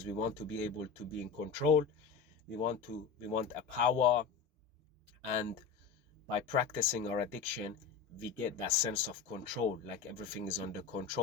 we want to be able to be in control. We want a power, and by practicing our addiction, we get that sense of control, like everything is under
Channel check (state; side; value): quieter; right; 6.2 dB